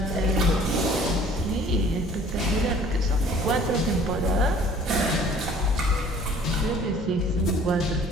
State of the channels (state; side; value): normal; both; correlation 0.52